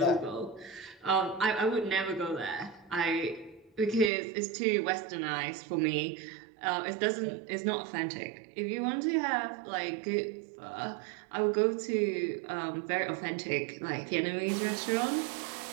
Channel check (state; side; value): drops out; left; at 4.1 s